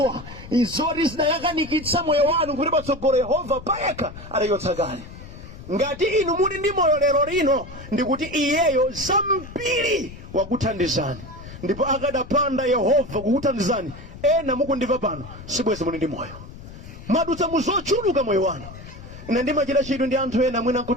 izoti zinayakanikitsa moyo wanu kuti patsogolo Yehova payekha adachotsa kale. Ngati inu muli ndi moyo lero lino ndikuti iyeyo zambiri wakuthandizani, ndipo akadapanda Yehova kukuthandizani, ena mukundimva pano sibwezi muli ndi moyo, madutsa muzochuluka moyo wanu. Ine ndimachita chidwi ndi anthu ena mwina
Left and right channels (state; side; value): noise; left; rumble, 15 dB below the sound